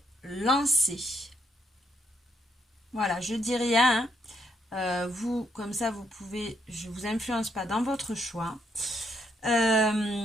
lancer. Voilà, je dis rien, hein. Vous, comme ça, vous pouvez, je ne vous influence pas dans votre choix.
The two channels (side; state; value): both; normal; correlation 0.75